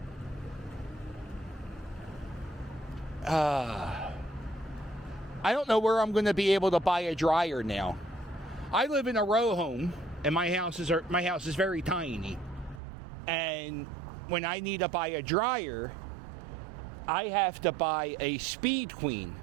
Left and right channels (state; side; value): drops out; left; at 12.8 s